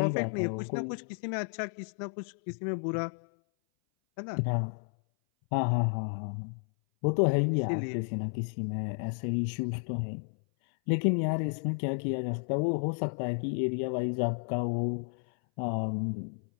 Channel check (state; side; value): silent; right; 57 dB below the other